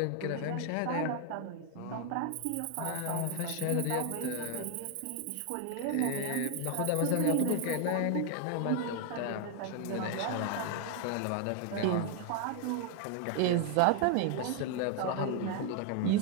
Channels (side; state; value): both; different; correlation 0.00